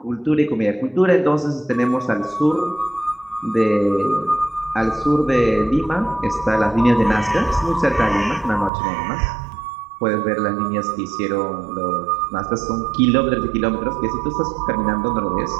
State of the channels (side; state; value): left; drops out; at 8.7 s